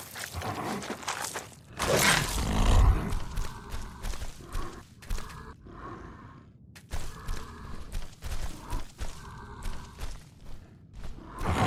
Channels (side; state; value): both; identical; correlation 1.00